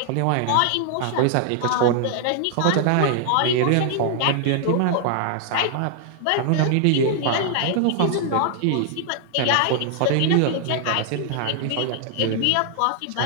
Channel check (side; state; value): both; different; correlation 0.00